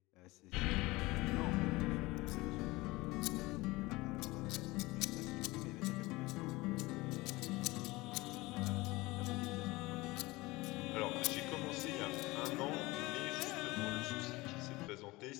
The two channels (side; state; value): right; quieter; 21.3 dB